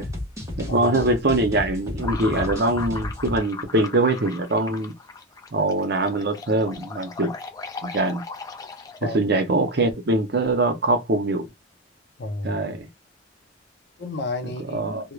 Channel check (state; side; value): normal; both; correlation 0.13